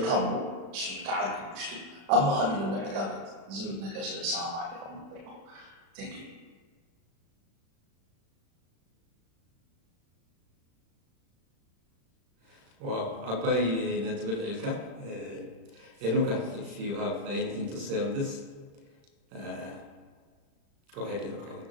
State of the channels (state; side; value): late; left; 36 ms